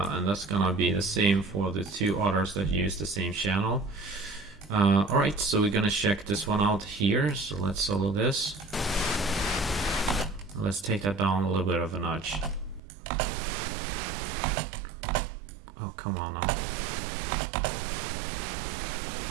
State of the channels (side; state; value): left; drops out; at 12.8 s